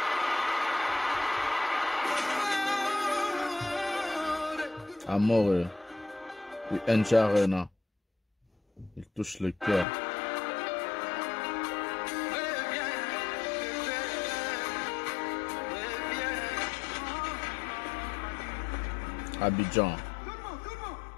Amore. UNG Arena. Il touche le cœur. Abidjan.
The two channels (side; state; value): right; drops out; at 9.9 s